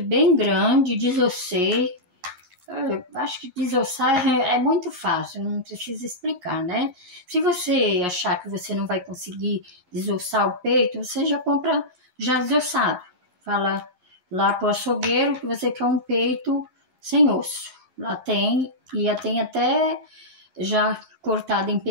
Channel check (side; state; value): left; late; 11 ms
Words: bem grande, desossei. Acho que desossar é muito fácil, não precisa explicar, né? Se você achar que você não vai conseguir desossar o peito, você já compra já desossado. Fala lá pro açougueiro que você quer um peito sem osso. Lá tem, e tem até já cortada em